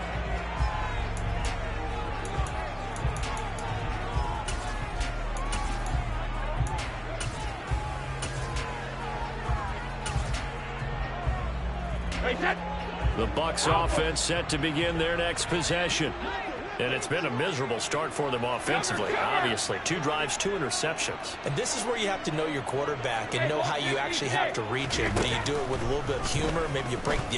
The Bucs offense set to begin their next possession. And it's been a miserable start for them offensively, obviously. 2 drives, 2 interceptions. And this is where you have to know your quarterback and know how you actually have to reach him. Do you do it with a little bit of humor? Maybe you break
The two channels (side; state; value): both; identical; correlation 1.00